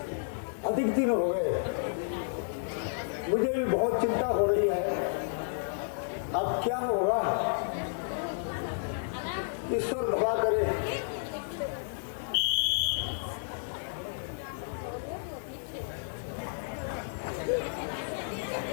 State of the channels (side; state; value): right; silent; 56 dB below the other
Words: अधिक दिन हो गए। मुझे भी बहुत चिंता हो रही है, अब क्या होगा। ईश्वर भला करे।